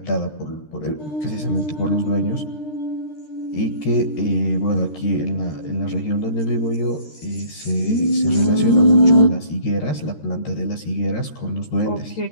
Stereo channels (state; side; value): late; right; 13 ms